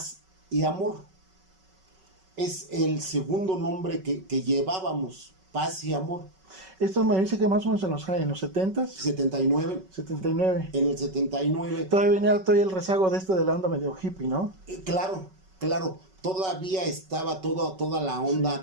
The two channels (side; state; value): left; late; 5.3 ms